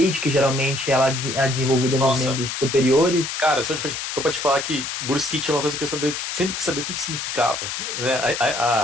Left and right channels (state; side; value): noise; left; hiss, 5 dB below the sound